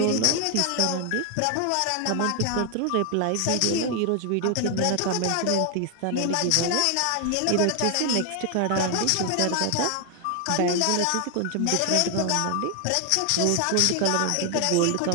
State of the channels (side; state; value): both; different; correlation 0.00